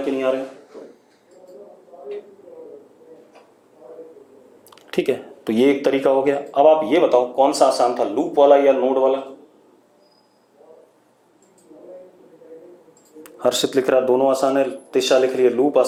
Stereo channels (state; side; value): identical; both; correlation 1.00